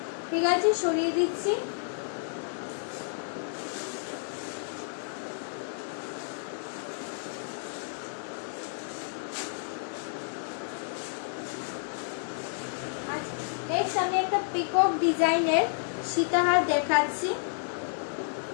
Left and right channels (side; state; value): right; silent; digital silence